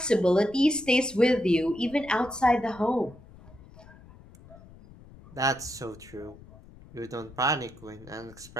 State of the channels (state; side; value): noise; left; rumble, 22 dB below the sound